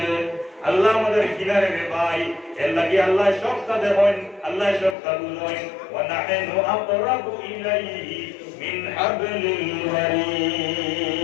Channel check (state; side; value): drops out; right; at 5.0 s